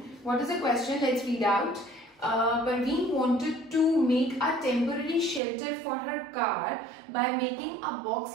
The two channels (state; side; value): drops out; left; at 5.4 s